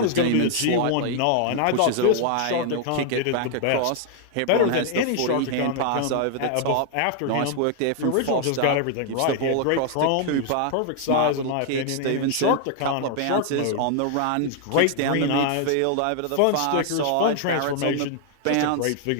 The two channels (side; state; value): both; different; correlation 0.00